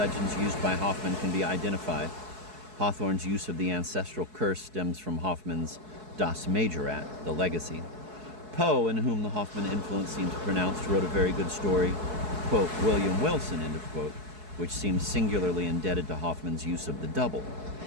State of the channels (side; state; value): left; late; 4.7 ms